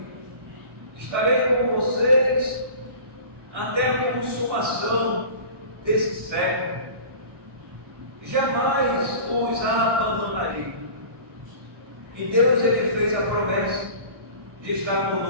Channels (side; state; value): left; late; 1.3 ms